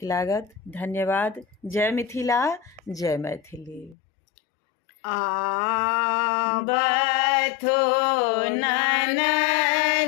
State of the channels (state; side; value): drops out; right; at 4.0 s